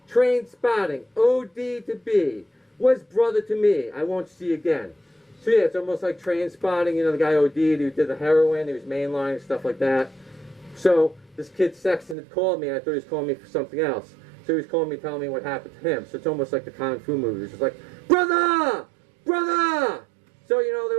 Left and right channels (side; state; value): left; drops out; at 12.2 s